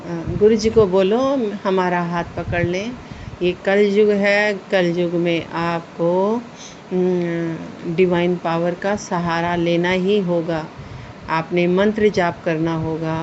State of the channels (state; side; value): identical; both; correlation 1.00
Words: गुरुजी को बोलो हमारा हाथ पकड़ लें। ये कलयुग है, कलयुग में आपको डिवाइन पावर का सहारा लेना ही होगा। आपने मंत्र जाप करना होगा,